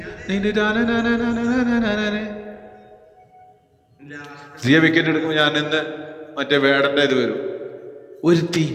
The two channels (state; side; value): identical; both; correlation 1.00